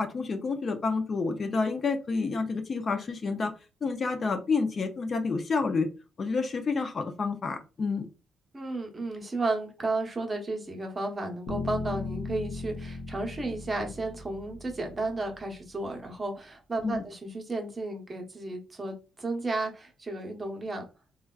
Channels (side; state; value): both; normal; correlation 0.84